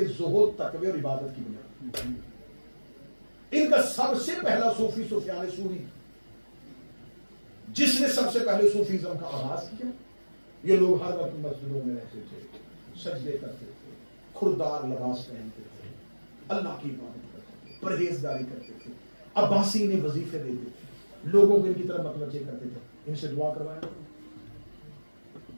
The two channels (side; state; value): both; inverted; correlation -1.00